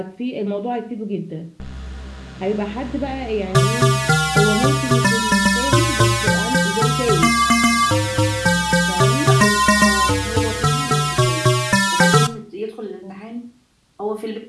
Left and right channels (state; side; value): identical; both; correlation 1.00